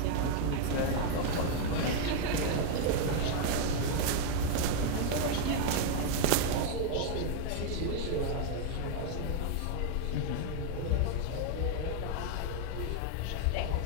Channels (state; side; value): different; both; correlation 0.00